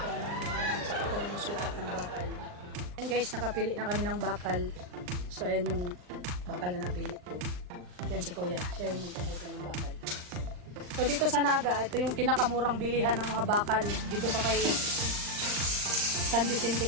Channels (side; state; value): left; late; 39 ms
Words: sa itong sukat ng bakal. And guys, nakapili na kami ng bakal. So ayan yung bakal na napili ko. Yan si Kuya, siya yung magpaputol ng bakal. So dito sa Naga, ito yung pinakamurang bilihan ng mga bakal dito sa kay San Vicente,